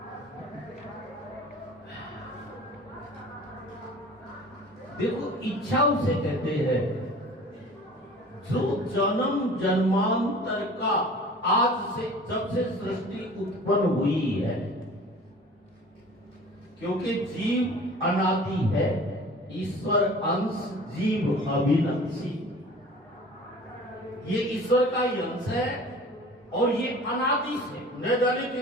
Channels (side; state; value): both; normal; correlation 0.44